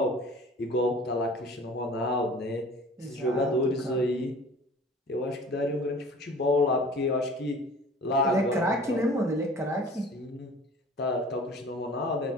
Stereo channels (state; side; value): normal; both; correlation 0.45